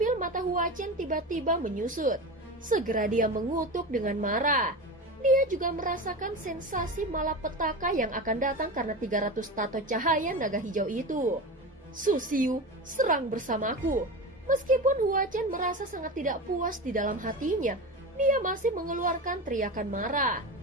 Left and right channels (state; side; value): normal; both; correlation 0.25